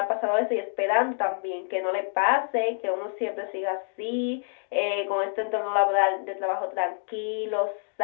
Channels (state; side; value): silent; right; digital silence